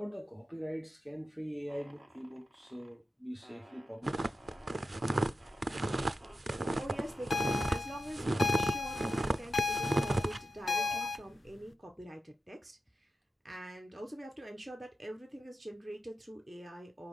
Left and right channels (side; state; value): both; normal; correlation 0.90